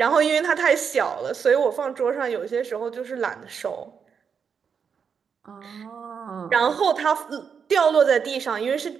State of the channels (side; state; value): left; quieter; 6.6 dB